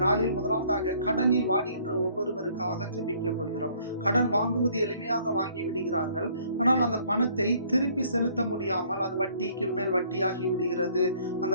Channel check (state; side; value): inverted; both; correlation -0.60